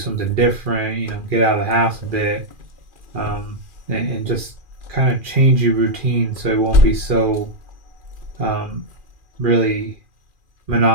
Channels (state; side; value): late; left; 2.4 ms